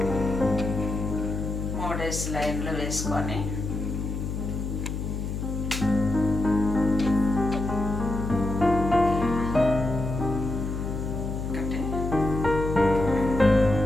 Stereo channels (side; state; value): left; noise; hum, 4 dB below the sound